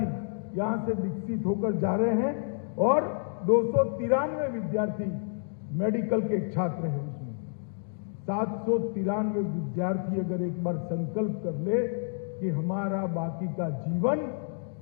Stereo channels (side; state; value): right; silent; digital silence